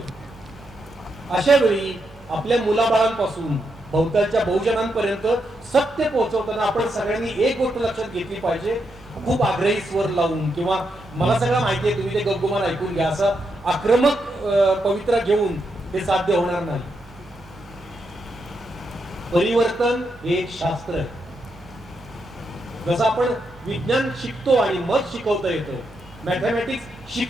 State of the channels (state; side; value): normal; both; correlation 0.82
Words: अशा वेळी आपल्या मुलाबाळांपासून भोवतालच्या बहुजनांपर्यंत सत्य पोहोचवताना आपण सगळ्यांनी एक गोष्ट लक्षात घेतली पाहिजे, खूप आग्रही स्वर लावून किंवा मला सगळं माहिती आहे तुम्ही ते गप्गुमान ऐकून घ्या असं आक्रमक पवित्रा घेऊन ते साध्य होणार नाही. परिवर्तन हे एक शास्त्र आहे. जसं आपण विज्ञान शिकतो आणि मग शिकवता येतं, मॅथमॅटिक्स